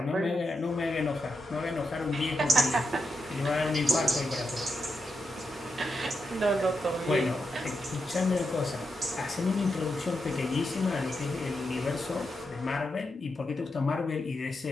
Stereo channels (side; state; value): both; normal; correlation 0.85